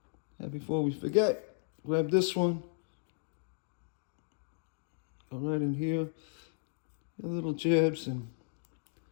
And before we forget, grab this one, go right in here, a little jabs, and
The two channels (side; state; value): right; silent; digital silence